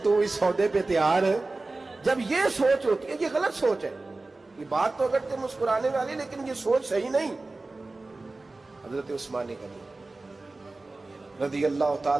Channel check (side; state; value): left; quieter; 3.3 dB